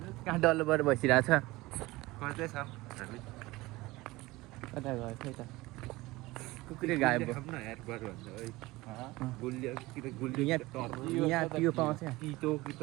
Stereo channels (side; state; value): left; quieter; 20.3 dB